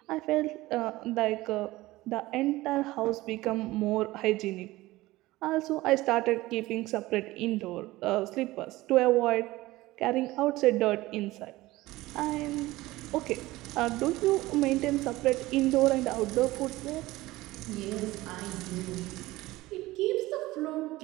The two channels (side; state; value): left; quieter; 18.5 dB